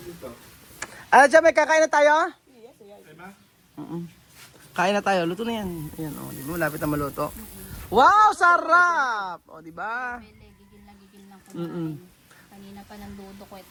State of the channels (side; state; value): both; identical; correlation 1.00